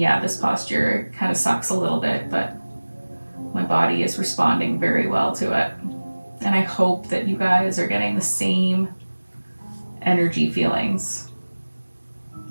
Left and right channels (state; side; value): inverted; both; correlation -1.00